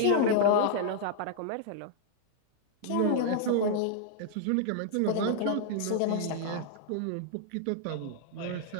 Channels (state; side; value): different; both; correlation -0.01